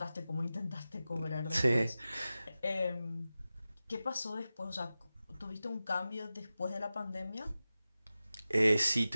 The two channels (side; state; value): both; inverted; correlation -0.94